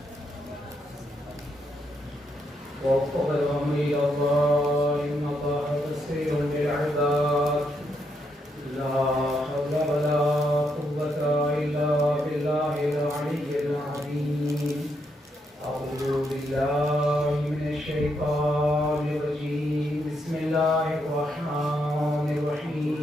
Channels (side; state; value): both; normal; correlation 0.78